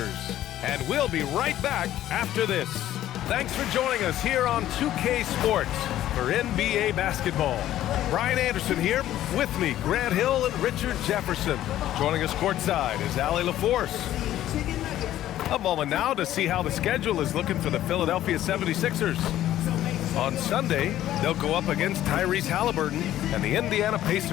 and we'll be right back after this. Thanks for joining us here on 2K Sports for NBA basketball. Brian Anderson here, with me, Grant Hill and Richard Jefferson. Joining us courtside is Allie LaForce. A moment now to see how the schedule is looking for the Philadelphia 76ers. On Sunday, they'll go up against Tyrese Halliburton and the Indiana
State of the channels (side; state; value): right; quieter; 13.0 dB